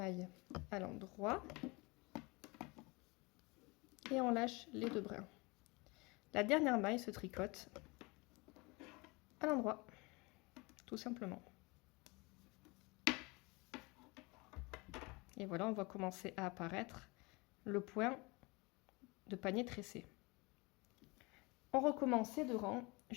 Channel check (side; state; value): right; quieter; 26.0 dB